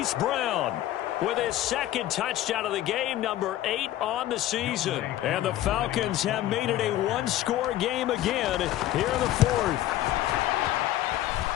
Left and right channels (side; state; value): right; quieter; 13.8 dB